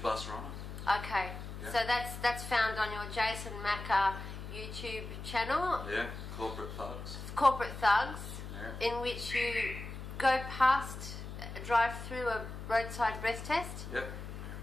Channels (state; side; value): noise; left; hum, 9 dB below the sound